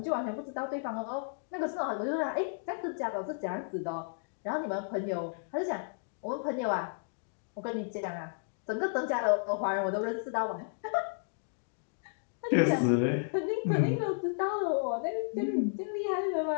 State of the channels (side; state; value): right; silent; digital silence